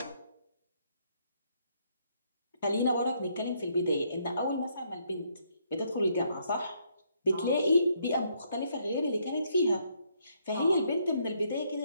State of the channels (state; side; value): inverted; both; correlation -0.72